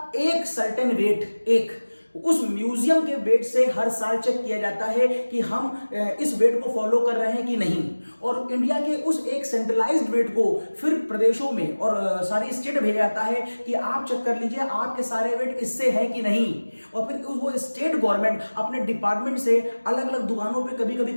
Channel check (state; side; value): inverted; both; correlation -1.00